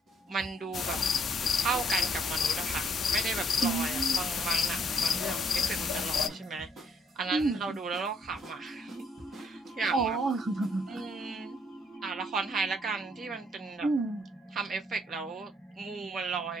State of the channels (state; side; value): normal; both; correlation 0.65